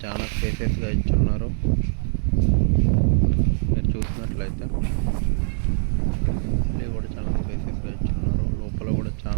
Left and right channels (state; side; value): silent; left; digital silence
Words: చాలా స్పేసెస్గా ఇచ్చున్నారు. మీరు చూసినట్లయితే గల్లీ కూడా చాలా స్పేసెస్గా ఇచ్చున్నారు. లోపల కూడా